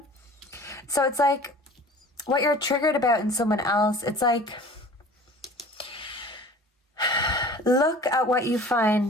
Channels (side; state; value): both; normal; correlation 0.44